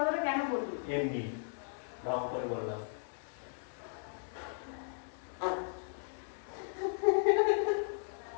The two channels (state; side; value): silent; right; 54 dB below the other